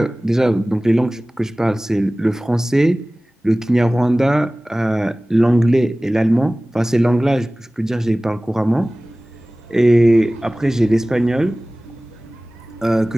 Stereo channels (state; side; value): normal; both; correlation 0.98